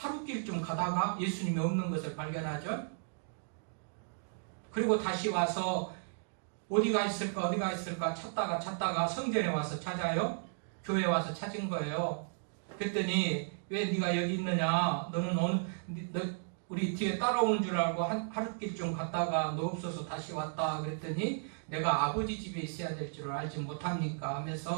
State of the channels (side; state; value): left; silent; digital silence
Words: 가다가 예수님이 없는 것을 발견하죠. 그리고 다시 와서 어디가 있을까 찾다가 성전에 와서 찾아요. 교회에 와서 찾은 거예요. 그랬더니 왜 네가 여기 있느냐? 너는 우리 뒤에 따라오는 줄 알고 하루길 좀 갔다가 너 없어서 다시 왔다. 그랬더니 내가 아버지 집에 있어야 될 줄 알지 못합니까?